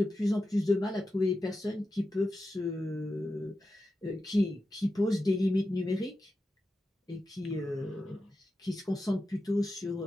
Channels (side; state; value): both; normal; correlation 0.90